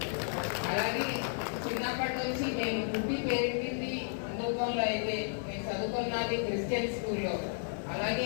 అలాగే చిన్నప్పటి నుంచి నేను పుట్టి పెరిగింది హిందుత్వంలో, అయితే నేను చదువుకున్నది క్రిస్టియన్ స్కూల్లో. అలాగే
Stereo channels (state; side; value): silent; right; 56 dB below the other